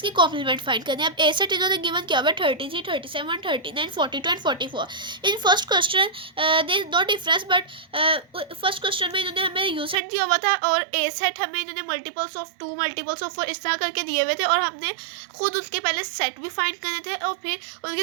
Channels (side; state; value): left; drops out; at 10.0 s